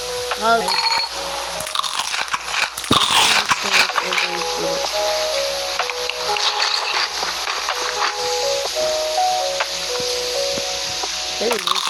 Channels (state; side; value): identical; both; correlation 1.00